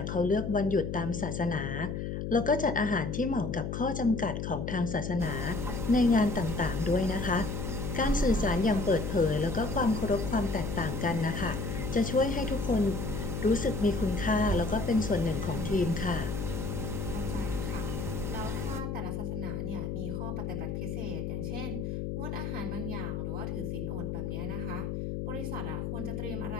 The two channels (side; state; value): left; noise; hum, 3 dB below the sound